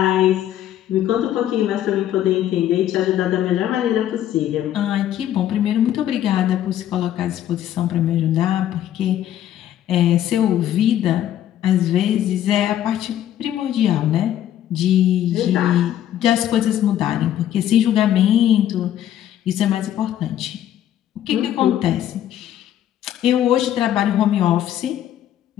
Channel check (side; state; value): right; quieter; 11.5 dB